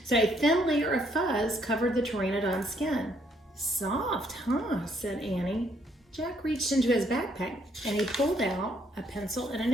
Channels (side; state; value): both; normal; correlation 0.69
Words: So a thin layer of fuzz covered the pteranodon's skin. Soft, huh? Said Annie. Jack reached into his backpack and he pulled out a pencil and a